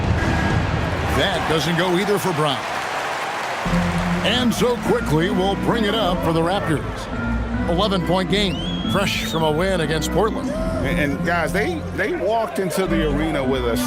That doesn't go either for Brown. And so quickly we'll bring it up for the Raptors. 11-point game, fresh from a win against Portland. And guys, they walked into the arena with a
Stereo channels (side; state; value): both; identical; correlation 1.00